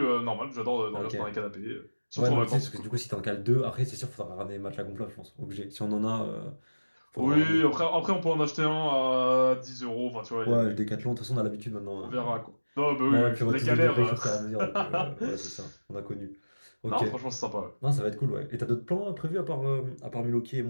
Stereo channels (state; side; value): inverted; both; correlation -1.00